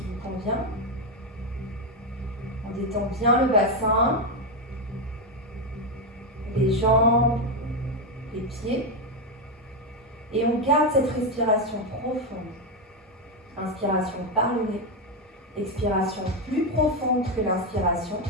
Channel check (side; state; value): both; normal; correlation 0.07